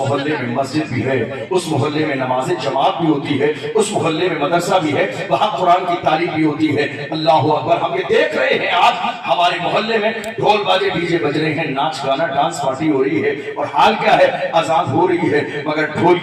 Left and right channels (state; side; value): identical; both; correlation 1.00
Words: میں مسجد بھی ہے، اس محلے میں نماز جماعت بھی ہوتی ہے، اس محلے میں مدرسہ بھی ہے، وہاں قرآن کی تعلیم بھی ہوتی ہے۔ اللہ اکبر، ہم یہ دیکھ رہے ہیں آج ہمارے محلے میں ڈھول باجے ڈیجے بج رہے ہیں، ناچ گانا ڈانس پارٹی ہو رہی ہے، اور حال کیا ہے، اذان ہو رہی ہے مگر ڈھول